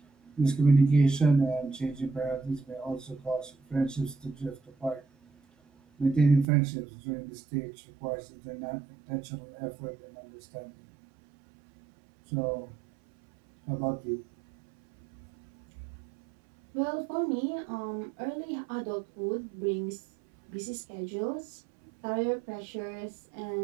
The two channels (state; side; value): drops out; left; at 6.5 s